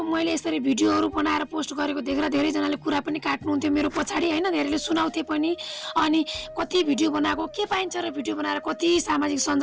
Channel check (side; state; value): both; identical; correlation 1.00